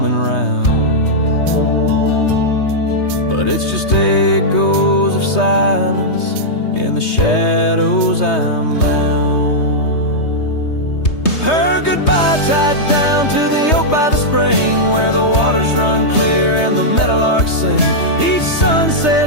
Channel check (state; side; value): late; right; 3.2 ms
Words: round, but it's just echoes of silence. In the shadows I'm bound. Her goodbye tied down to the oak by the spring, where the waters run clear and the meadowlarks sing. Each